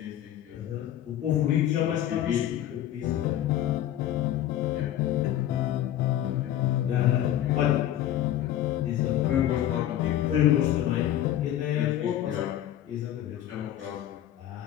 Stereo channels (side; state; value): right; quieter; 12.0 dB